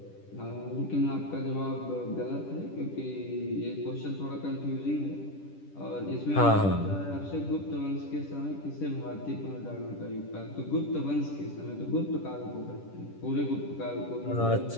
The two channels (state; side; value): late; right; 10 ms